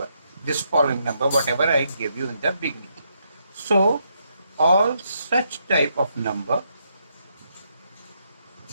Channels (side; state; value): both; inverted; correlation -0.77